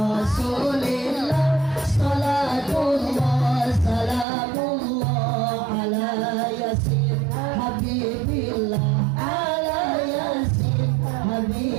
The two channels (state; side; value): drops out; left; at 4.2 s